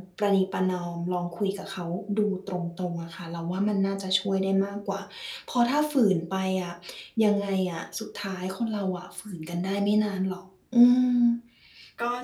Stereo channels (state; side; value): identical; both; correlation 1.00